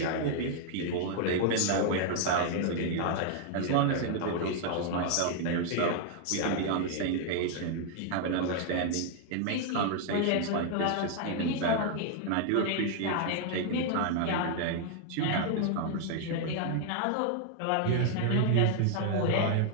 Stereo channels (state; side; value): different; both; correlation 0.00